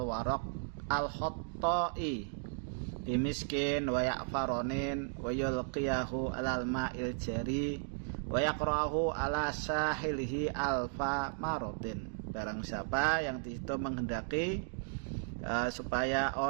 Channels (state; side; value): silent; left; digital silence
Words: warok al khottoi bimiskin wa yakfaronin wa yulqiyahu alal ma'il jari wa yakrahu ala sahilihi alfa marotin. Barang siapa yang disitu menghendaki supaya